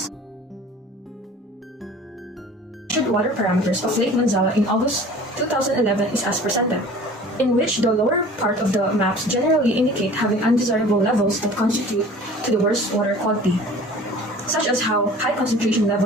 Water parameters of Lake Manzala in August 2011 is as presented, in which the lower part of the maps generally indicate having undesirable levels that constitute to the worst water quality, such as how high concentration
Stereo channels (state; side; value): normal; both; correlation 0.45